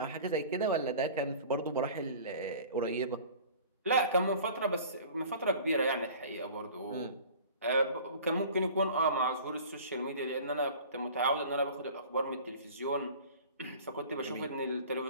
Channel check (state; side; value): inverted; both; correlation -0.43